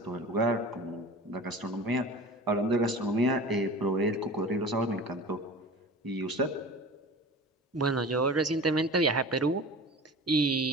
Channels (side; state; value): both; normal; correlation 0.36